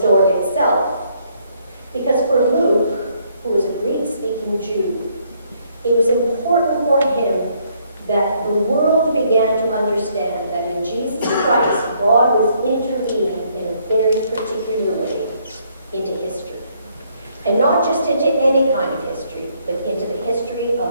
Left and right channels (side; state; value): both; inverted; correlation -0.69